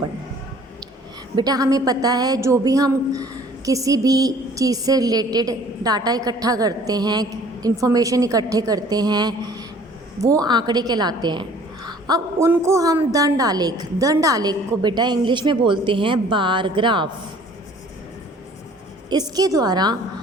बेटा हमें पता है जो भी हम किसी भी चीज़ से रिलेटेड डाटा इकट्ठा करते हैं, इंफॉर्मेशन इकट्ठे करते हैं, वो आंकड़े कहलाते हैं। अब उनको हम दंड आलेख को बेटा इंग्लिश में बोलते हैं बार ग्राफ। इसके द्वारा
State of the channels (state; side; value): normal; both; correlation 0.53